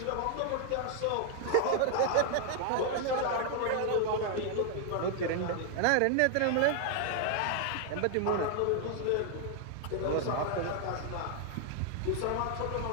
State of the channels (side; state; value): both; different; correlation 0.00